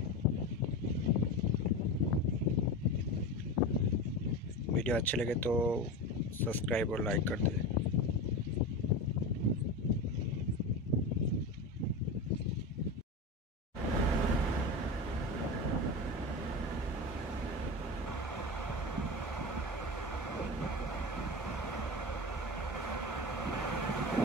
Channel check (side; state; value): both; normal; correlation 0.25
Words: Video अच्छे लगे तो सब्सक्राइब और लाइक कर दें।